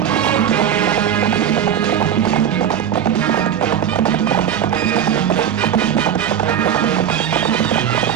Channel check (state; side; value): quieter; left; 9.3 dB